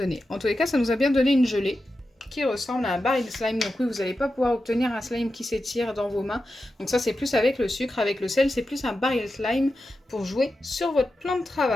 En tous les cas, ça nous a bien donné une gelée qui ressemble à un baril slime. Donc oui, vous n'allez pas pouvoir obtenir un slime qui s'étire dans vos mains. Donc ça, c'est plus avec le sucre, avec le sel, c'est plus un baril slime pour jouer sur votre plan de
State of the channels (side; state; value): both; normal; correlation 0.90